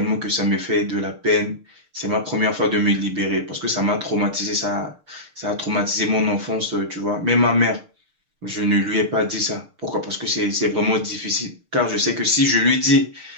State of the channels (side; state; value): left; late; 6.6 ms